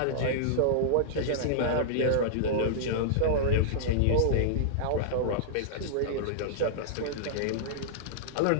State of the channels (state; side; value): different; both; correlation -0.02